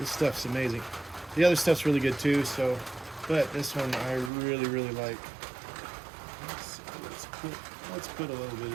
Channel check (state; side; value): drops out; left; at 4.3 s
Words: stuff's amazing. The other stuff's really good too, but this one I really, really like. Let's put a little bit